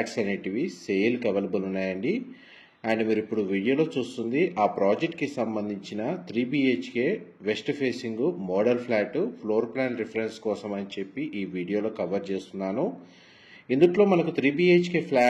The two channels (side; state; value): both; identical; correlation 1.00